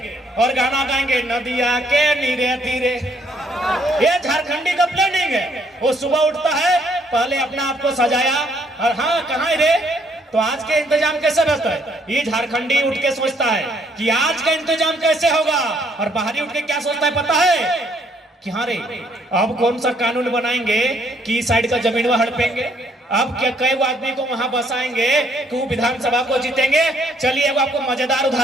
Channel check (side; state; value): both; normal; correlation 0.67